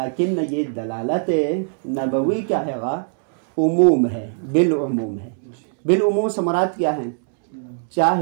یہ دلالت نبوی کیا ہے گا؟ عموم ہے، بالعموم ہے. بالعموم سے مراد کیا ہے؟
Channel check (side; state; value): left; silent; digital silence